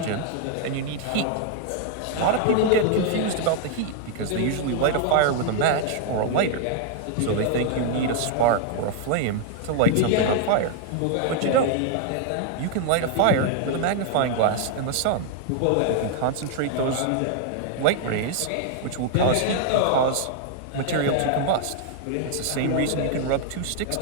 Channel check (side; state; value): both; different; correlation 0.00